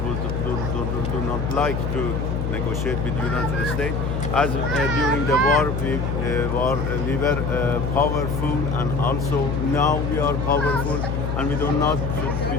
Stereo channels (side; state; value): left; noise; hum, 1 dB below the sound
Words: do not like to negotiate with the United States. As during the war, we were powerful, and also now we are powerful, and we do